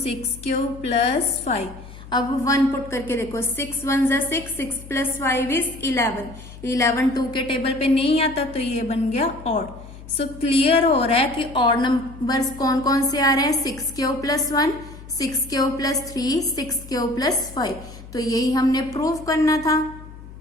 plus 5। अब 1 पुट करके देखो, 6 1 जा 6, 6 प्लस 5 इज 11, 11 2 के टेबल पे नहीं आता, तो ये बन गया ऑड। सो क्लियर हो रहा है कि ऑड नंबर्स कौन कौन से आ रहे हैं, 6q plus 1, 6q plus 3, 6q plus 5, तो यही हमने प्रूव करना था।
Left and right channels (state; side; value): noise; left; hum, 16 dB below the sound